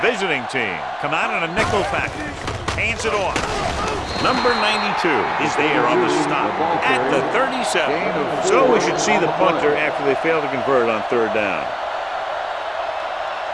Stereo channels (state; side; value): identical; both; correlation 1.00